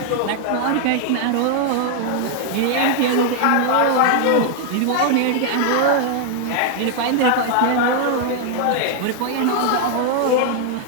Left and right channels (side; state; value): both; different; correlation 0.00